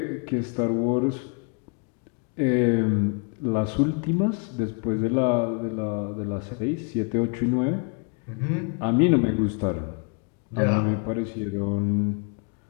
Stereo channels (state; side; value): quieter; right; 36.8 dB